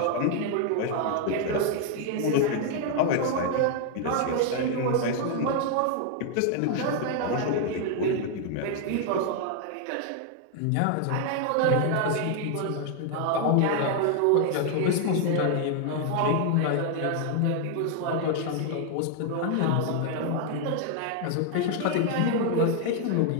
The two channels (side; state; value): both; different; correlation 0.00